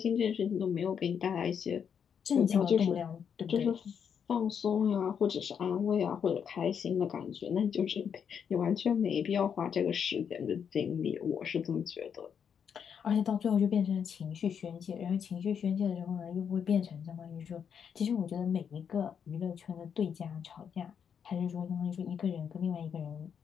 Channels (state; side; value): quieter; right; 7.5 dB